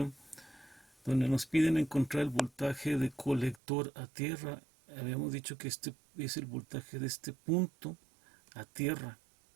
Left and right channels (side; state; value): left; drops out; at 3.6 s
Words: donde nos piden encontrar el voltaje de colector a tierra. Habíamos dicho que este es el voltaje de este punto a tierra.